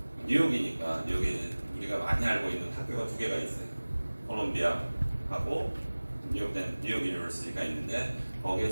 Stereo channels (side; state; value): both; inverted; correlation -1.00